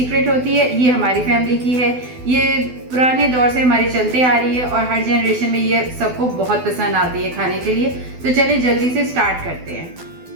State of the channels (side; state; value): left; late; 12 ms